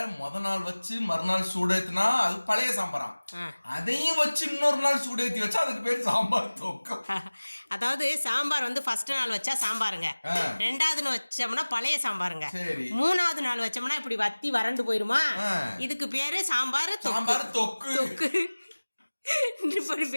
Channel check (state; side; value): inverted; both; correlation -1.00